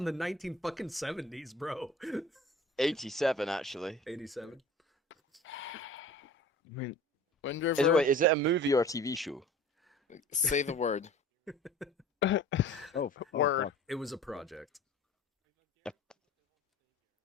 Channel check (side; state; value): both; normal; correlation 0.42